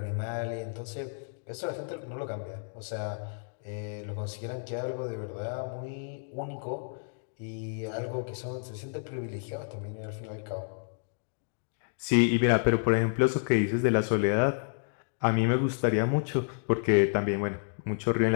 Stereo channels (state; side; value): silent; right; digital silence